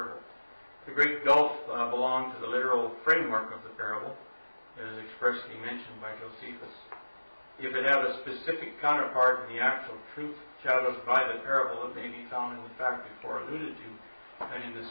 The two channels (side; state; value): both; inverted; correlation -1.00